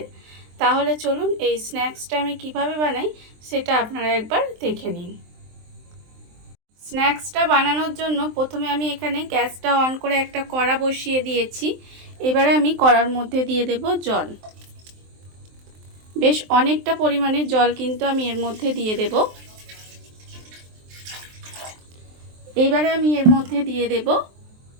তাহলে চলুন এই স্ন্যাক্সটা আমি কিভাবে বানাই সেটা আপনারা একবার দেখে নিন। স্ন্যাক্সটা বানানোর জন্য প্রথমে আমি এখানে গ্যাসটা অন করে একটা কড়া বসিয়ে দিয়েছি। এবারে আমি কড়ার মধ্যে দিয়ে দেব জল। বেশ অনেকটা পরিমাণে জল কিন্তু আমি এর মধ্যে দিয়ে দেব। এবারে আমি এর মধ্যে দিয়ে দেব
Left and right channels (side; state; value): left; late; 23 ms